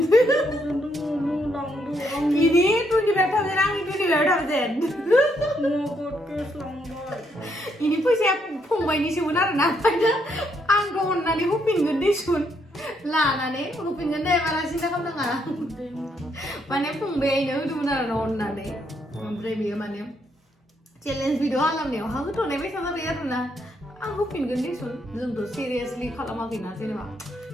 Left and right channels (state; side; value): normal; both; correlation 0.74